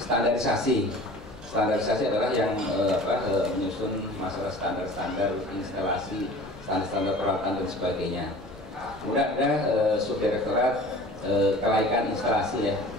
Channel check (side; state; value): both; normal; correlation 0.43